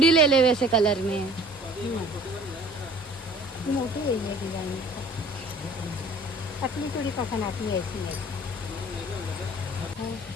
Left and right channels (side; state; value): right; noise; hiss, 23 dB below the sound